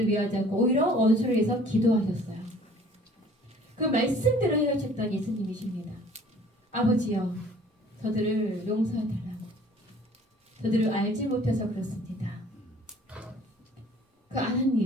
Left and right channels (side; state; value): both; normal; correlation 0.53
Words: 미워하지 않고 오히려 원수를 위해서 기도하셨어요. 그 말씀대로 해하셨던 예수님이십니다. 아버지여 저들을 용서해달라고. 저들을 알지 못해서 그렇습니다. 그